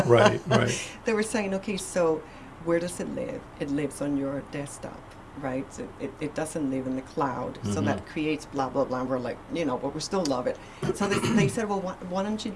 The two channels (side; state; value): both; identical; correlation 1.00